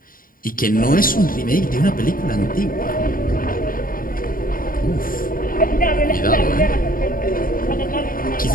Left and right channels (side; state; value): right; late; 0.41 ms